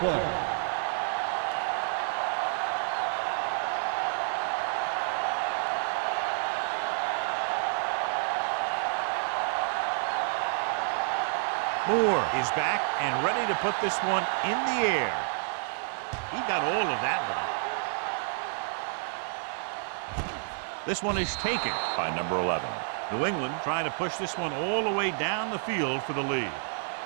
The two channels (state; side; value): silent; left; 58 dB below the other